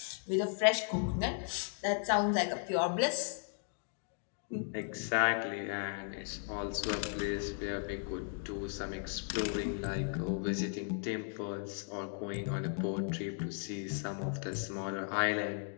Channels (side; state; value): right; silent; 54 dB below the other